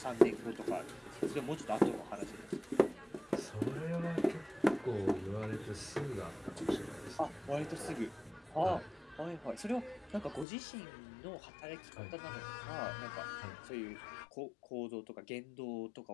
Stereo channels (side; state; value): right; drops out; at 10.5 s